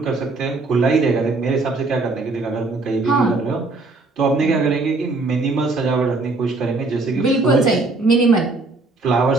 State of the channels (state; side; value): quieter; left; 3.5 dB